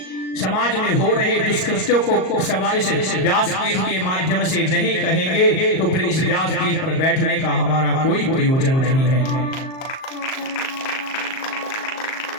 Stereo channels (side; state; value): right; late; 38 ms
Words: समाज में हो रहे दुष्कृत्यों को इस व्यासपीठ के माध्यम से नहीं कहेंगे तो फिर इस व्यासपीठ पर बैठने का हमारा कोई प्रयोजन नहीं है।